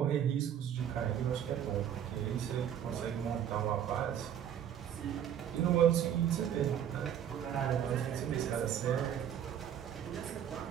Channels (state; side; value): quieter; left; 9.7 dB